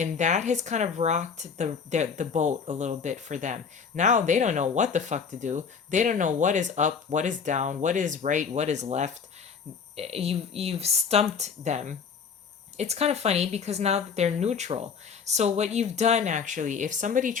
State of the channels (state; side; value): quieter; right; 6.1 dB